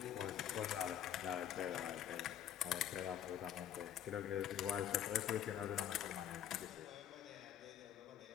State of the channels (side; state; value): right; quieter; 10.4 dB